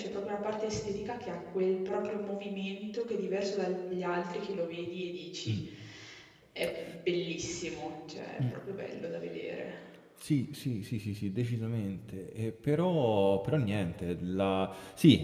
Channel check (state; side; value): identical; both; correlation 1.00